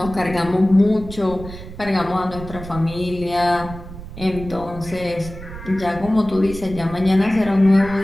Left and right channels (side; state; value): right; noise; rumble, 13 dB below the sound